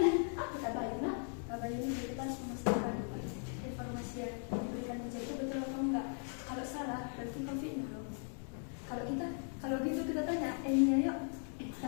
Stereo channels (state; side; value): silent; right; 52 dB below the other